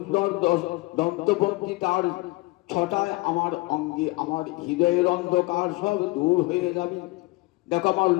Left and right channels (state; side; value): quieter; right; 22.5 dB